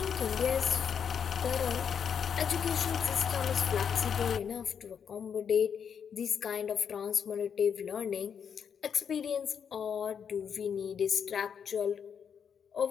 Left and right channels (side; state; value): right; quieter; 7.4 dB